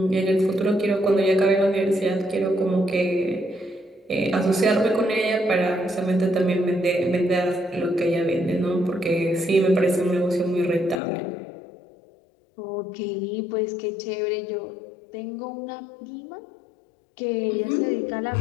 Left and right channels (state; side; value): drops out; right; at 11.0 s